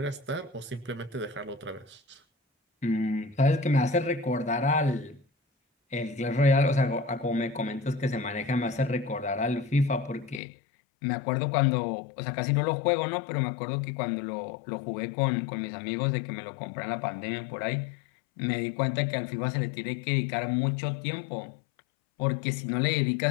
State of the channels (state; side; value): drops out; right; at 10.4 s